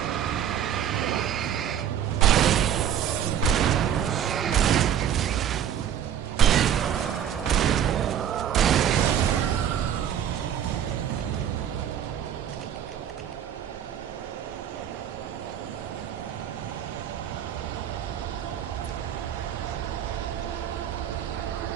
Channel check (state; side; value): quieter; left; 9.7 dB